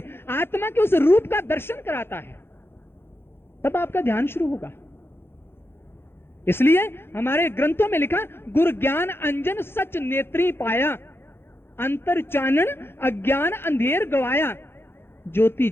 आत्मा के उस रूप का दर्शन कराता है, तब आपका ध्यान शुरू होगा। इसलिए हमारे ग्रंथों में लिखा, गुरु ज्ञान अंजन सच नेत्री पाया, अंतर चानन अज्ञान अंधेर गवाया, ज्योति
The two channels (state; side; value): late; right; 0.11 ms